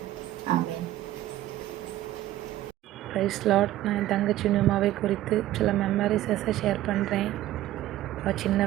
ஆமென். Praise lord. நான் என் தங்கச்சி நியூமாவை குறித்து சில மெமரிஸை ஷேர் பண்ணுறேன். சின்ன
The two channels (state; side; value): quieter; left; 14.5 dB